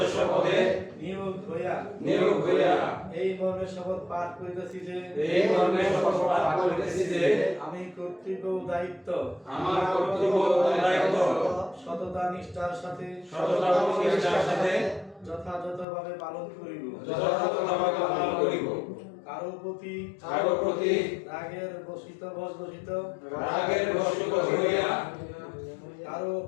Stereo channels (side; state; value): right; drops out; at 15.9 s